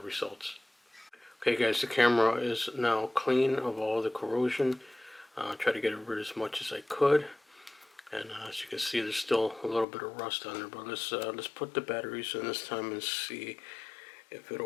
Okay guys, the camera is now clean of all the corrosion. Try to get rid of as much as I could. And as you can see, there's still a little bit of rust on there. But let's put the batteries in this time and see if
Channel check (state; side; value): drops out; right; at 9.9 s